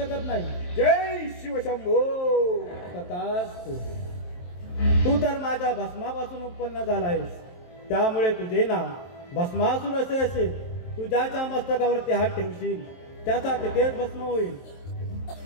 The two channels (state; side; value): late; right; 23 ms